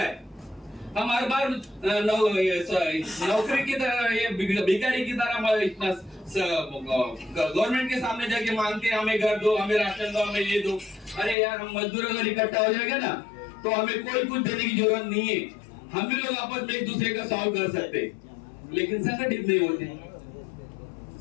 है। हम हर बार नौकरी की तरह, ये भिखारी की तरह इतना गवर्नमेंट के सामने जाके मांगते हैं हमें घर दो, हमें राशन दो, हमें ये दो। अरे यार, हम मजदूर अगर इकट्ठा हो जाएगा ना तो हमें कोई कुछ देने की जरूरत नहीं है, हम भी लोग आपस में एक दूसरे का सॉल्व कर सकते हैं। लेकिन संगठित नहीं होते।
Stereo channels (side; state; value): right; drops out; at 11.4 s